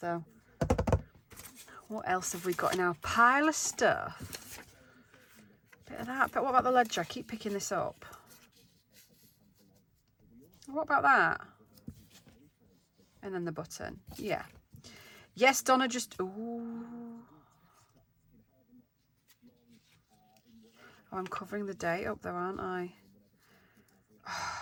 What else have we got in our pile of stuff? Bit of that. But what about the ledger? I keep picking this up. What about that? And then the button. Yeah. Yes, Donna, just... Ooh. Oh, I'm covering the date up there, aren't I?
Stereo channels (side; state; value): both; identical; correlation 1.00